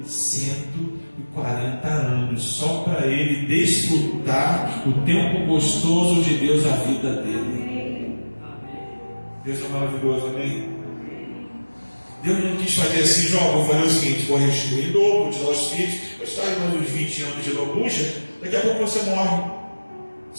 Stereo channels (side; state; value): both; inverted; correlation -1.00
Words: 140 anos, só para ele desfrutar o tempo gostoso de Deus na vida dele. Deus é maravilhoso, amém? Deus não quis fazer assim, Jó, vou fazer o seguinte, vou restituir em dobro, vou te dar os filhos, vou te dar mais uns 20 anos de lambuja, daqui a pouco você morre.